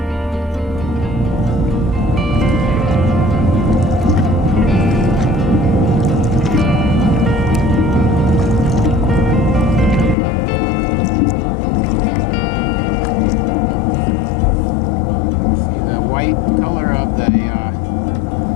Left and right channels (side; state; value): right; drops out; at 10.2 s